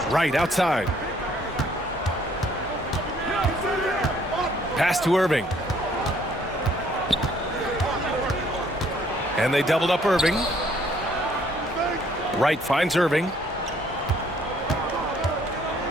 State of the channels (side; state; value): both; normal; correlation 0.63